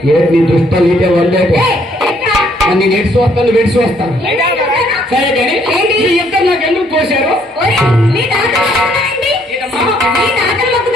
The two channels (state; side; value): normal; both; correlation 0.67